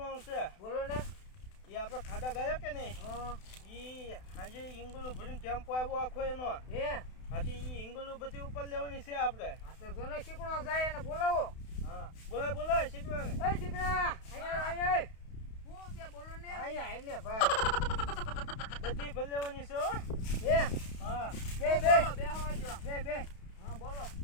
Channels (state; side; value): late; right; 32 ms